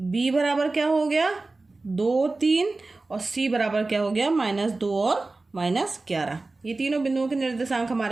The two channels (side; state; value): left; quieter; 3.4 dB